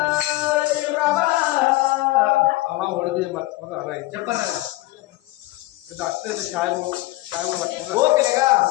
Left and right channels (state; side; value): quieter; right; 19.0 dB